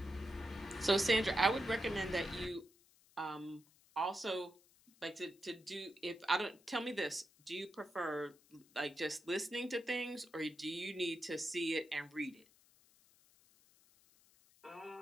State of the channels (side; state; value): left; noise; hiss, 29 dB below the sound